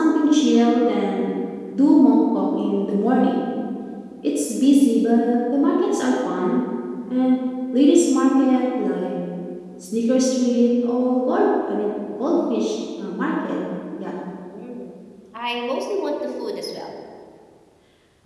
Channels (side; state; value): both; identical; correlation 1.00